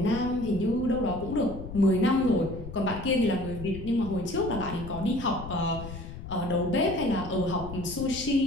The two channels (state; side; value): noise; left; rumble, 11 dB below the sound